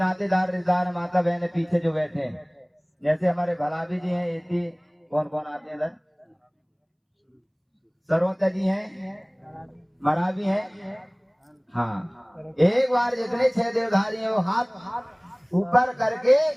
रिश्तेदार माता बहने पीछे जो बैठे हैं, जैसे हमारे भलाभी जी हैं, एती कौन कौन आते हैं इधर, सरवता जी हैं, मरावी हैं। हाँ, एक बार जितने 6 देवधारी हैं वो हाथ ऊपर करके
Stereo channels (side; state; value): both; identical; correlation 1.00